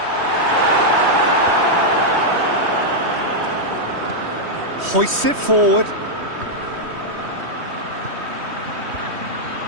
Hoists it forward.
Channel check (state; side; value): late; left; 3.1 ms